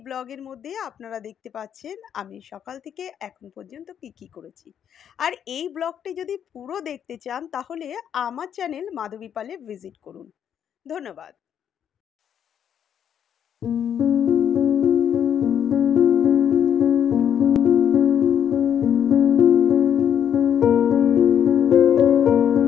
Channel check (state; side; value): quieter; right; 8.9 dB